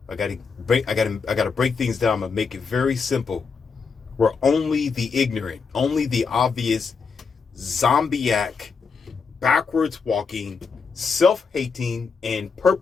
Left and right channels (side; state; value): right; quieter; 5.3 dB